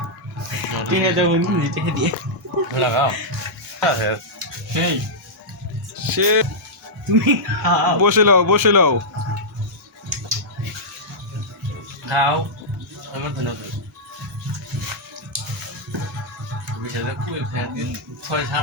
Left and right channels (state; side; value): normal; both; correlation -0.10